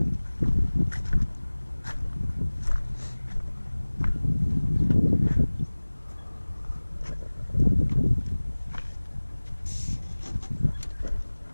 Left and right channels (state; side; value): inverted; both; correlation -1.00